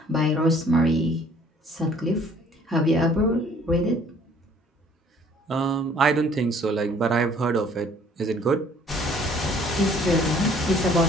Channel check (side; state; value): both; normal; correlation 0.57